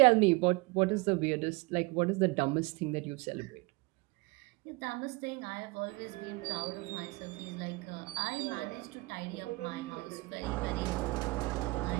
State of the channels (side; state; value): left; quieter; 24.8 dB